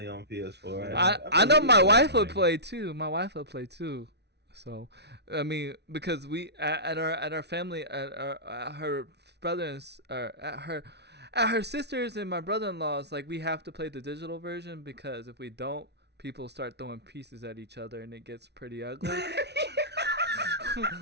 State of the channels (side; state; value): left; late; 0.49 ms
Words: on PS4. I know my believe wife that. would play too. My wife would play too. So, I mean, because we at our family at her brothers or at her sisters and my brother-in-law's, like, we have to play the digital version because if we don't, people start throwing pieces at each other and it gets pretty ugly.